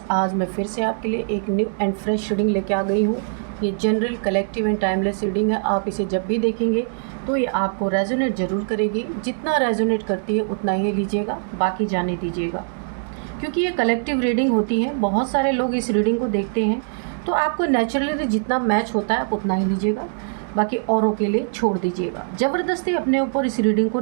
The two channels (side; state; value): left; silent; digital silence